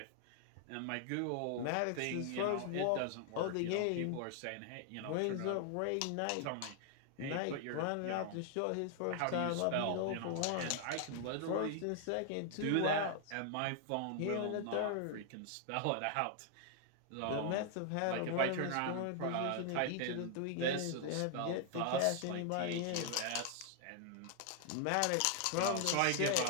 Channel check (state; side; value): different; both; correlation 0.00